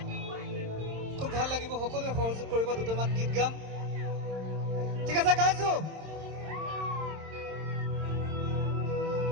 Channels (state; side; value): late; left; 26 ms